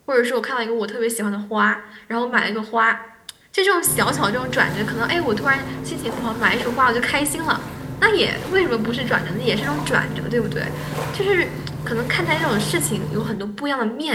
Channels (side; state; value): both; identical; correlation 1.00